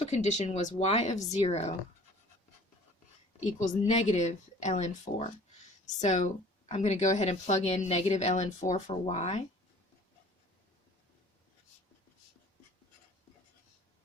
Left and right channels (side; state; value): both; normal; correlation 0.49